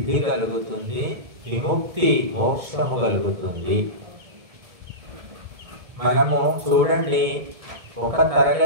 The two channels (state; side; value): late; left; 2.2 ms